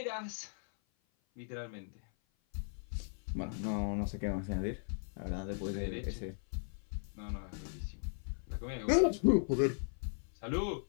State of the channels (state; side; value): silent; right; 53 dB below the other